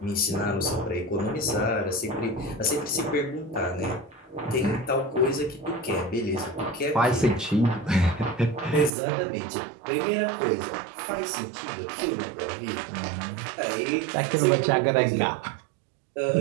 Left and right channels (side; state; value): left; drops out; at 8.9 s